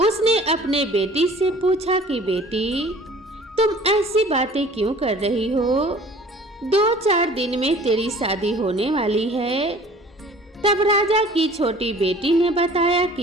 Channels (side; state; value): both; normal; correlation 0.49